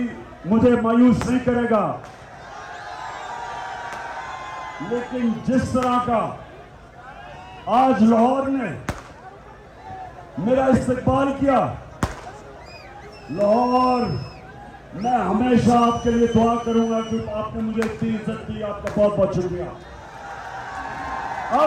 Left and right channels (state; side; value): identical; both; correlation 1.00